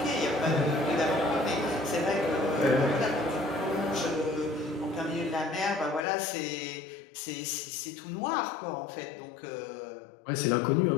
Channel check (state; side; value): drops out; right; at 6.1 s